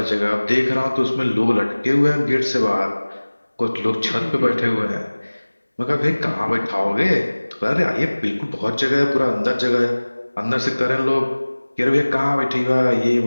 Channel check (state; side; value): inverted; both; correlation -1.00